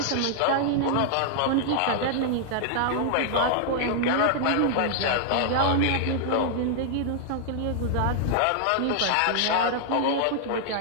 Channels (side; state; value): both; different; correlation -0.01